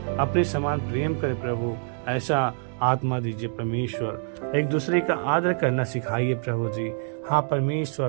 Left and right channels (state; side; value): silent; left; 61 dB below the other